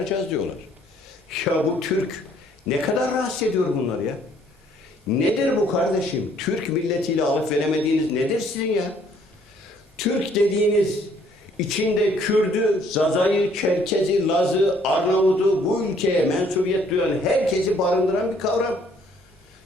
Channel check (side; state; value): both; normal; correlation 0.63